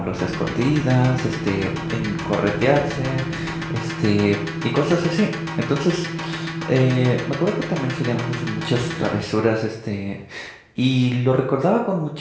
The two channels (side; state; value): both; identical; correlation 1.00